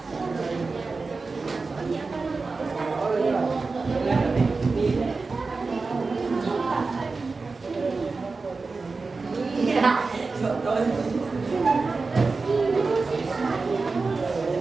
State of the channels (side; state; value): left; quieter; 4.1 dB